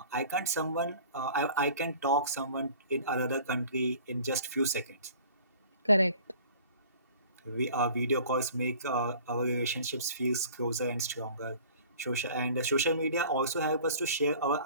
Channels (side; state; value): both; inverted; correlation -0.47